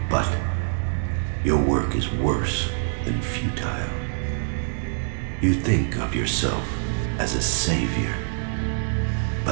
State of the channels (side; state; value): left; silent; digital silence